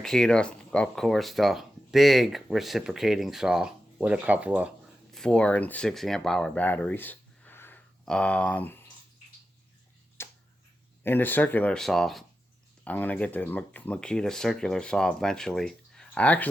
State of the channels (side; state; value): both; normal; correlation 0.91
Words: of course, the big reciprocating saw with a couple of 4 and 6 amp hour batteries. And the circular saw. I'm going to get the Makita circular saw eventually. I